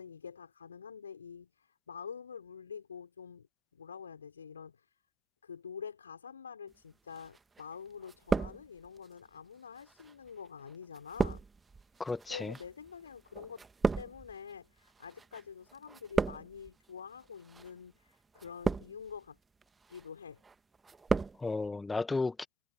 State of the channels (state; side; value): normal; both; correlation 0.74